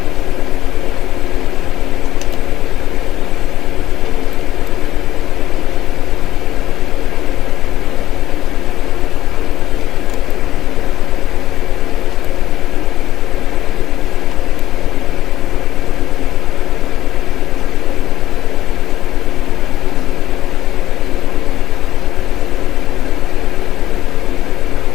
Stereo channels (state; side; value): quieter; right; 13.5 dB